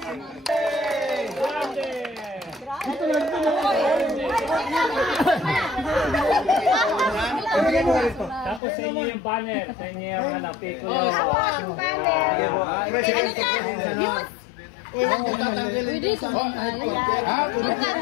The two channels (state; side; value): drops out; right; at 8.6 s